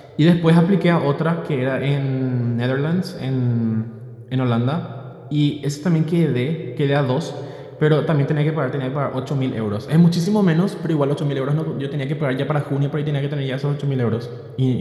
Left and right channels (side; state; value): both; identical; correlation 1.00